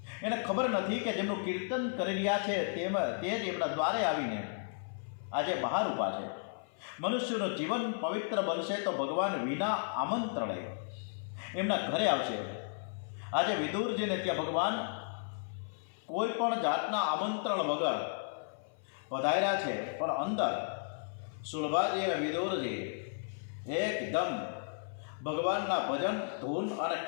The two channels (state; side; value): silent; right; 55 dB below the other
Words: નથી કે જેમનું કીર્તન કરી રહ્યા છે તે જ એમના દ્વારે આવીને આજે બહાર ઊભા છે। મનુષ્યનું જીવન પવિત્ર બનશે તો ભગવાન વિના આમંત્રણે એમના ઘરે આવશે। આજે વિદુરજીને ત્યાં ભગવાન કોઈ પણ જાતના આમંત્રણ વગર પધાર્યા છે, પણ અંદર સુલભાજી અને વિદુરજી એકદમ ભગવાનના ભજન ધૂન અને